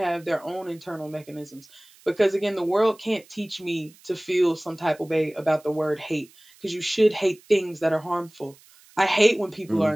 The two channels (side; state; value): right; noise; hiss, 27 dB below the sound